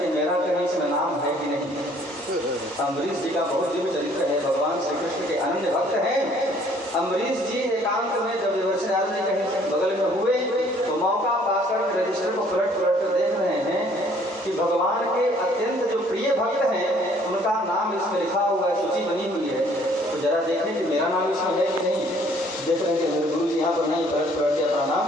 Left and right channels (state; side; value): normal; both; correlation 0.59